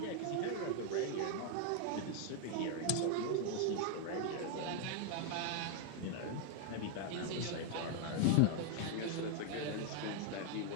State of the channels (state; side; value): different; both; correlation 0.00